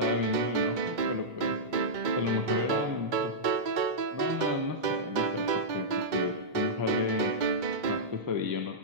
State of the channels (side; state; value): left; late; 2.1 ms